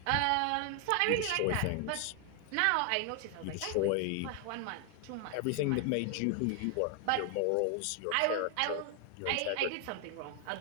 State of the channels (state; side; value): different; both; correlation 0.00